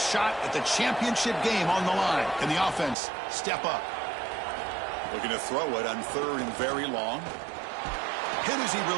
at the championship game on the line. Can the offense step up? Looking to throw it on third and very long. Hit as he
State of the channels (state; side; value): drops out; left; at 3.0 s